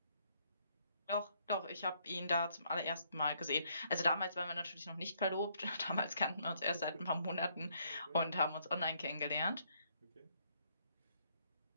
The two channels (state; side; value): inverted; both; correlation -0.70